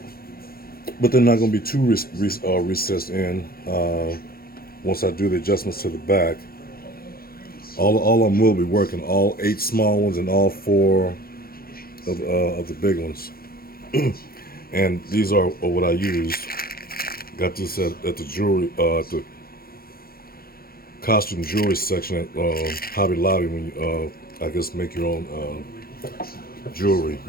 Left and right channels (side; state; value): right; late; 0.44 ms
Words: but they're not going to be too recessed in once I do the adjustments to the back. All of them will be working, all 8 small ones and all 4 of the big ones. And these are what I used. Got this at the jewelry, at the costume jewelry section at Hobby Lobby when you, I guess, make your own jewelry,